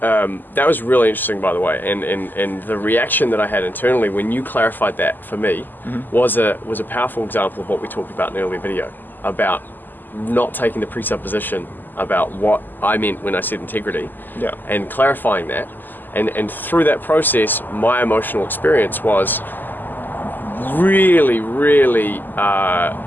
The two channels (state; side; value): late; right; 0.089 ms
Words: That was really interesting, by the way, and the reaction that I had internally when you clarified that for me was a powerful example of what we talked about in an earlier video about not taking the presupposition about what I meant when I said integrity, and clarifying that, and through that process, my emotional experience was really